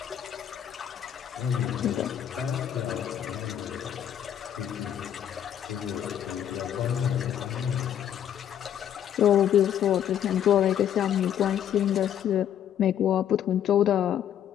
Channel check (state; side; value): quieter; right; 9.9 dB